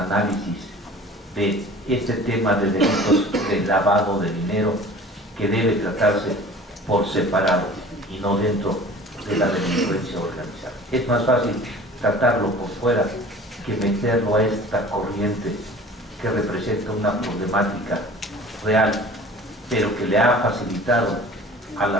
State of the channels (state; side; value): normal; both; correlation 0.44